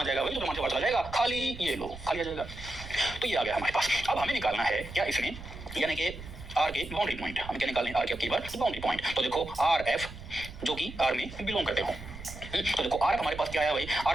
जाएगा भाई? तो मान से बात आ जाएगा, खाली ये लो, खाली आ जाएगा। तो ये आ गया हमारे पास। अब हमें निकालना है क्या इसमें? यानी कि आर के बाउंड्री पॉइंट। हमें क्या निकालने? आर के की बार बाउंड्री पॉइंट। तो देखो आर एफ जो कि आर में बिलोंग करते हो। तो देखो आर हमारे पास क्या आया भाई?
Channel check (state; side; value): noise; right; rumble, 13 dB below the sound